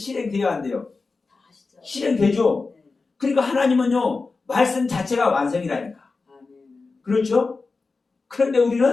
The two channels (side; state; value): right; quieter; 4.1 dB